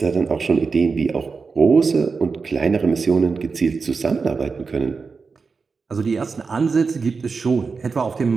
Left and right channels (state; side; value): quieter; left; 4.8 dB